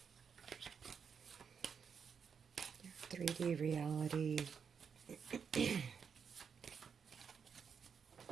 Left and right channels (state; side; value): quieter; left; 6.6 dB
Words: Your 3D reality.